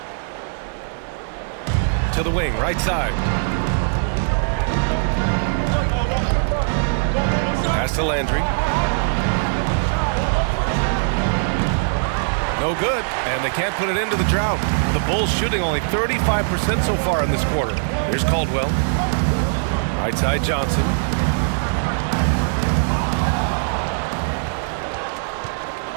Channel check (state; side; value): silent; left; digital silence